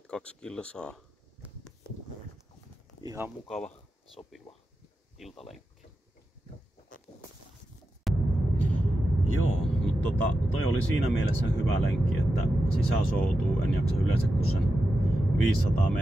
kilsaa. Ihan mukava, sopiva iltalenkki. Joo, mutta toi oli siinä mielessä hyvä lenkki, että sisäsoutuu en jaksa yleensä kuin sen 500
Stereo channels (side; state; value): both; normal; correlation 0.90